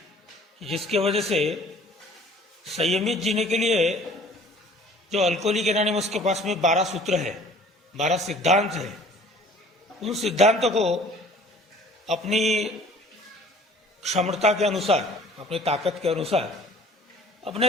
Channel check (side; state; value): both; normal; correlation 0.51